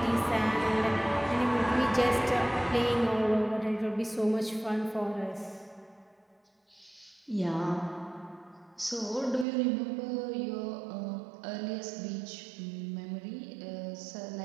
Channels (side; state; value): left; drops out; at 9.5 s